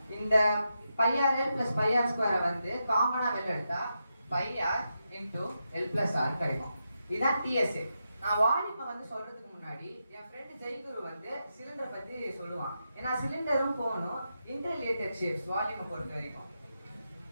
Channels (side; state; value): both; inverted; correlation -0.86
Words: இந்த πrl plus πr² வந்து காமனா வெளில எடுத்தா πr into L plus R கிடைக்கும். இதுதான் TSA. நான் வால்யூமை வந்து சொல்றதுக்கு முன்னாடி என் ஃப்ரெண்ட் ஜெய்குரு வந்து சிலிண்டர் பத்தி சொல்லுவான். ஏன்னா சிலிண்டரும் கோனும் இன்டர்ரிலேட்டட் ஷேப்ஸ் வால்யூமை பொறுத்த வரைக்கும்.